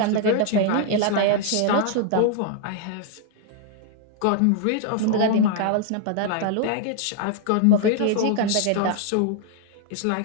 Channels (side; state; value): both; different; correlation 0.00